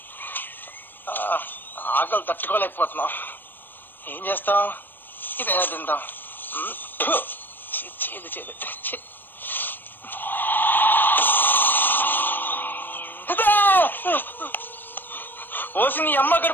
ఆకలి తట్టుకోలేకపోతున్నాం. ఏం చేస్తాం? ఇదైనా తిందాం. చేదు చేదు. ఓసి నీ అమ్మ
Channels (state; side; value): late; right; 0.093 ms